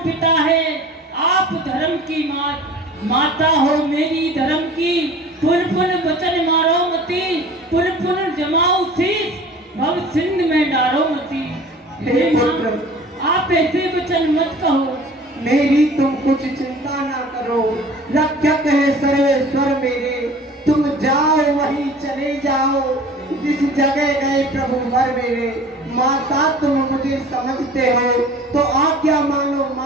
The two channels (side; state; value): both; normal; correlation 0.44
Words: पिता है, आप धर्म की माता हो मेरी धर्म की। पुन पुन वचन मारो मती, पुन पुन जमाओ शीश, भव सिंध में डारो मती। हे माँ, आप ऐसे वचन मत कहो। मेरी तुम कुछ चिंता ना करो, रक्षक है सर्वेश्वर मेरे। तुम जाओ वहीं चले जाओ, जिस जगह गए प्रभु वर मेरे। माता तुम मुझे समझते हो तो आज्ञा मानो